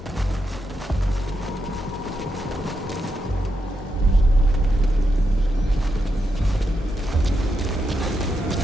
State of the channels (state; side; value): normal; both; correlation 0.84